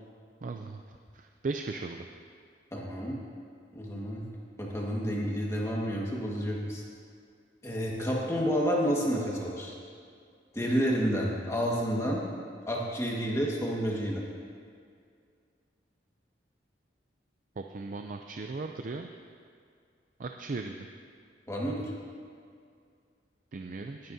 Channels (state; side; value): normal; both; correlation 0.68